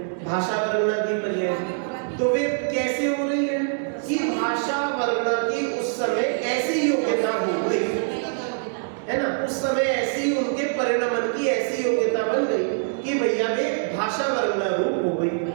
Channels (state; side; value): silent; left; digital silence